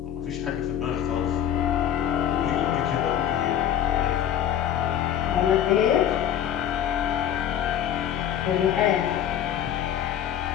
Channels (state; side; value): quieter; right; 10.1 dB